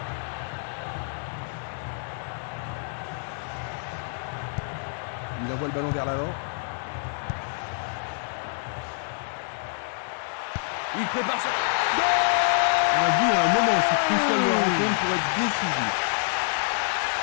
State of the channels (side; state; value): right; silent; 60 dB below the other